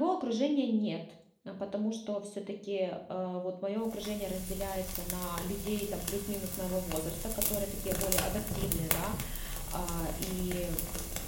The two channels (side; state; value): both; identical; correlation 1.00